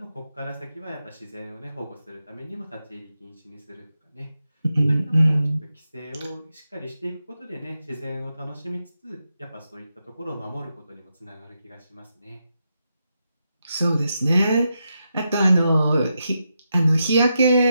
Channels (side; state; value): both; inverted; correlation -0.86